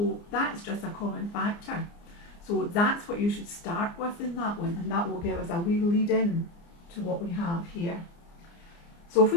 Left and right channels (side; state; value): right; late; 29 ms